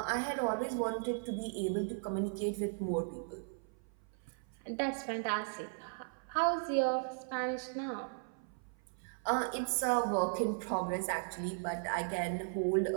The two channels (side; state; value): left; silent; 53 dB below the other